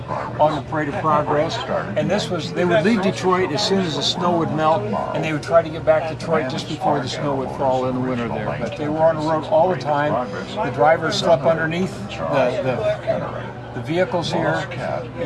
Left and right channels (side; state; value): both; identical; correlation 1.00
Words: the Parade of Progress. And they would leave Detroit as soon as the snow would melt, and they would try to get back to Detroit just before the snow would fall in the winter there. But they were on the road all the time. The drivers slept underneath the vehicles here,